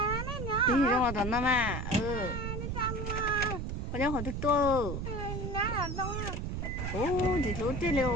Tí gì trong đó nó mà, ừ. Có cháu hỏi thức tôi. Ồ, gì lú chết liều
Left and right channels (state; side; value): noise; right; rumble, 3 dB below the sound